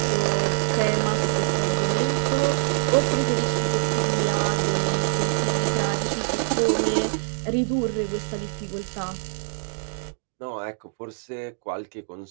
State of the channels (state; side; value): silent; left; digital silence